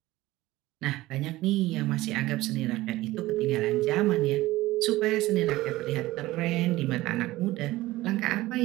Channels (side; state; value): left; quieter; 17.7 dB